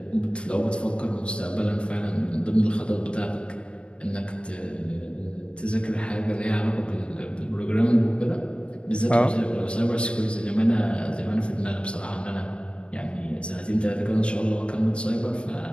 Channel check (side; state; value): right; late; 0.058 ms